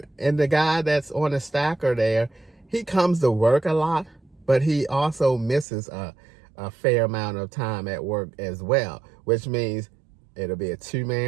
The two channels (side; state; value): left; drops out; at 5.7 s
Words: the guy that's on the stacker there, he comes to work a lot, but he also misses a fair amount of time at work as well, which means it'll be a